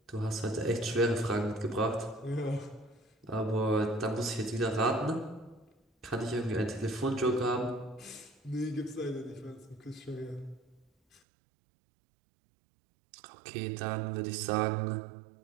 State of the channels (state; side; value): drops out; left; at 11.2 s